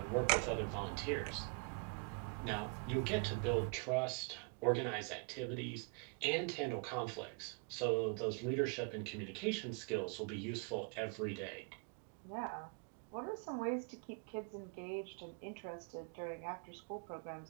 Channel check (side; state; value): left; quieter; 35.4 dB